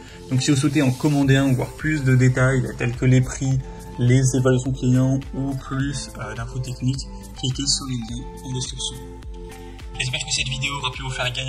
Donc si vous souhaitez en commander un ou voir plus de détails tels que les prix, les évaluations clients ou plus d'infos techniques, cliquez sur les liens en description. J'espère que cette vidéo aura pu vous faire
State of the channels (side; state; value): both; identical; correlation 1.00